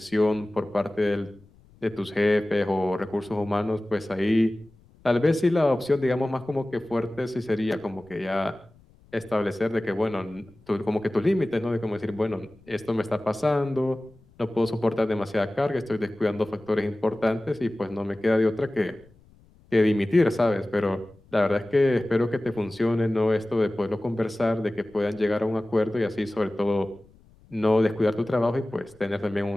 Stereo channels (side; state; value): left; noise; rumble, 28 dB below the sound